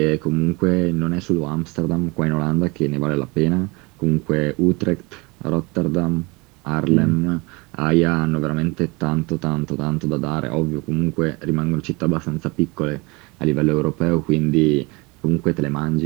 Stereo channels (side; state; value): left; quieter; 26.5 dB